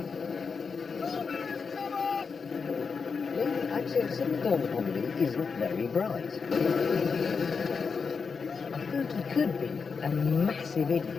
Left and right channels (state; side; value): quieter; right; 5.4 dB